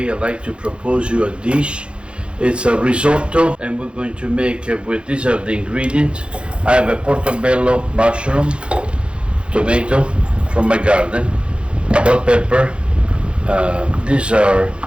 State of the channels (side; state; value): left; late; 0.057 ms